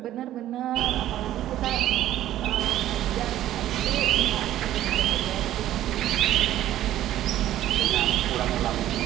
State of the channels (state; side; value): quieter; left; 13.1 dB